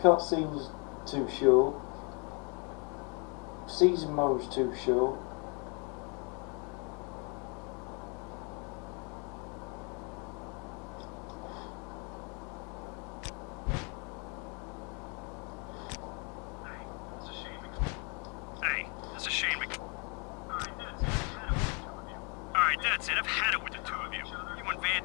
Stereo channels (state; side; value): quieter; right; 33.8 dB